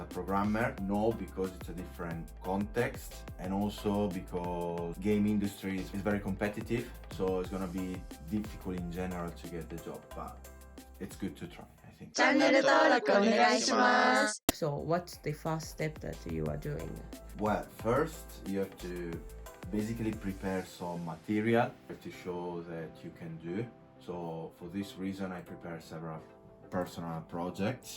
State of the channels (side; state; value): both; identical; correlation 1.00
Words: programmer. No, because it's a different context. And also because game industry is very competitive. So it's gonna be difficult in general to get the job, but it's good to try, I think. チャンネル登録お願いします。 So what's the first step that you are doing? Well, first you have to basically prepare some material to show that you can do. So for this reason, I prepare several personal